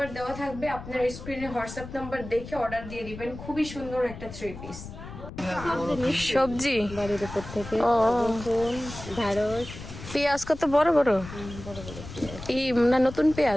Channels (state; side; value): noise; left; rumble, 12 dB below the sound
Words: দেওয়া থাকবে, আপনার স্ক্রিনে হোয়াটসঅ্যাপ নাম্বার দেখে অর্ডার দিয়ে দিবেন। খুবই সুন্দর একটা থ্রি পিস। সবজি বাড়ির উপর থেকে ঢেঁড়স, পেঁয়াজ কত বড় বড়, এই না নতুন